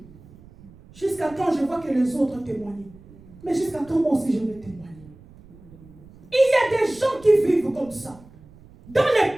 Jusqu'à quand je vois que les autres témoignent? Mais jusqu'à quand moi aussi je vais témoigner? Il y a des gens qui vivent comme ça. Dans les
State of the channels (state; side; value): noise; right; rumble, 23 dB below the sound